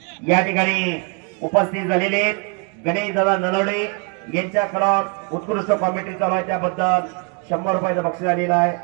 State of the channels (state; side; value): quieter; left; 36.0 dB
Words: या ठिकाणी उपस्थित झालेले. गणेश दादा नलवडे यांच्याकडून उत्कृष्ट कॉमेंट्री चालू आहे. त्याबद्दल 100 रुपयाचं बक्षीस आलेलं आहे.